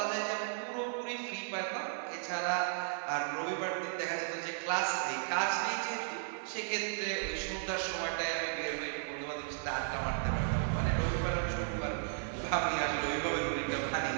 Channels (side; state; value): left; silent; 54 dB below the other